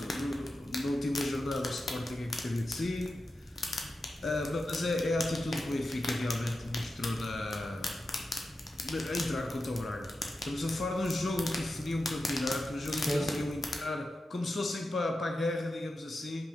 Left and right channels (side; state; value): both; normal; correlation 0.91